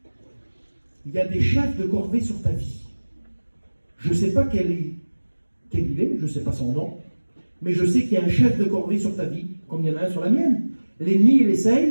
Il y a des chefs de corvée sur ta vie. Je ne sais pas quel il est, je ne sais pas son nom, mais je sais qu'il y a un chef de corvée sur ta vie, comme il y en a un sur la mienne. L'ennemi, il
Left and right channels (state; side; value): inverted; both; correlation -1.00